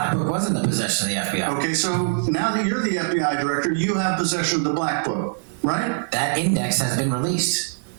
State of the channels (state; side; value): silent; left; digital silence